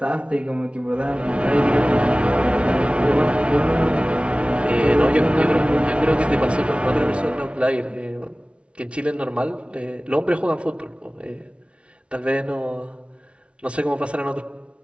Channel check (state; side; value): late; left; 0.060 ms